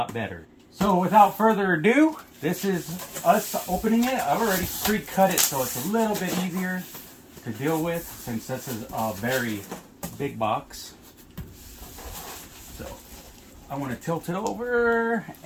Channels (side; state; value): both; identical; correlation 1.00